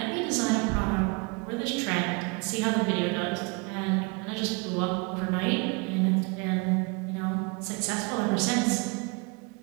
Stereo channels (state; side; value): quieter; left; 30.1 dB